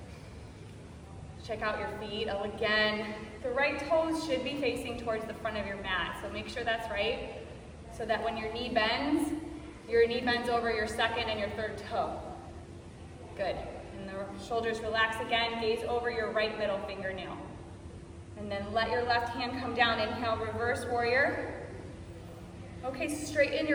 Check out your feet. Again, the right toes should be facing towards the front of your mat. So make sure that's right, so that when your knee bends over your second and your third toe. Good. And the Shoulders relax again, gaze over your right middle fingernail. And then let your left hand come down. Inhale, reverse warrior. Okay, straighten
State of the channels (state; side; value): identical; both; correlation 1.00